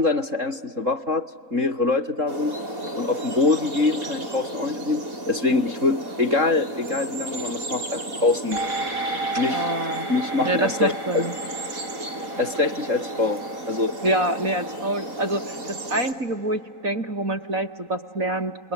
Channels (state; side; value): late; left; 4.2 ms